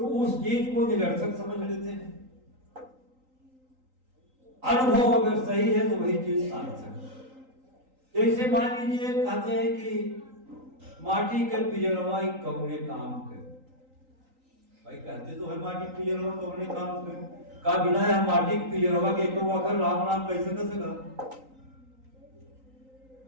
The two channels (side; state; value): left; late; 3.9 ms